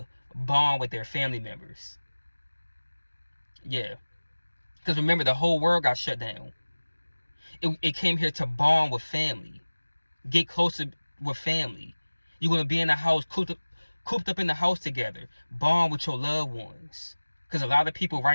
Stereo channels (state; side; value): inverted; both; correlation -1.00